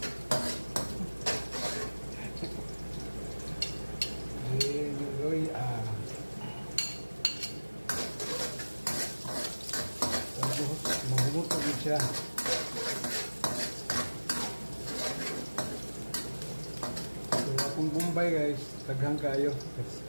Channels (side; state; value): both; inverted; correlation -1.00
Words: Mahumot na din siya. So, akong Bombay guys, taghang kayo.